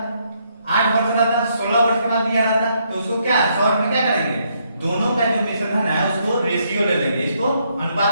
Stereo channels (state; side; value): inverted; both; correlation -0.74